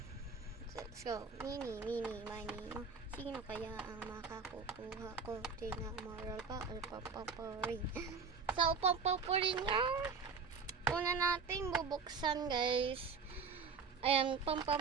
Let's go. Mini, mani. Sino kaya ang makakukuha ko? Cinnamoroll pa or pom-pom rin? So, pom-pom yung una nating bubuksan, guys. Ayan,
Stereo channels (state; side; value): quieter; left; 5.3 dB